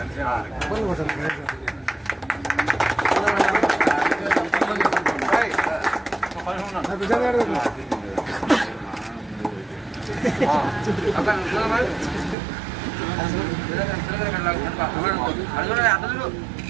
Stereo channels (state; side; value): drops out; left; at 12.4 s